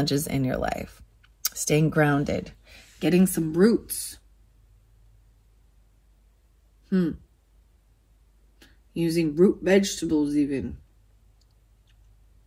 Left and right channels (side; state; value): both; identical; correlation 1.00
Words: in your life. Staying grounded. Getting some roots. Using root vegetables even.